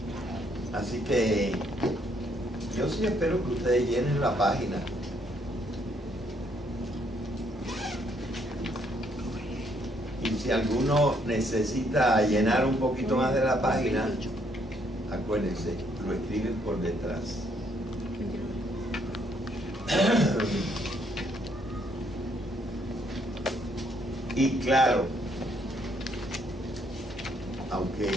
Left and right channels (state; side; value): normal; both; correlation 0.70